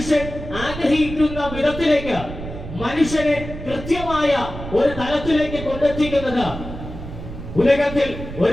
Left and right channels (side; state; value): right; noise; rumble, 10 dB below the sound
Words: ആഗ്രഹിക്കുന്ന വിധത്തിലേക്ക് മനുഷ്യനെ കൃത്യമായ ഒരു തലത്തിലേക്ക് കൊണ്ടെത്തിക്കുന്നത് ഉലകത്തിൽ